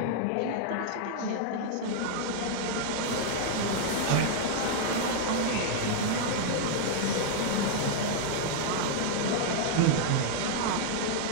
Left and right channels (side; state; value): both; different; correlation 0.00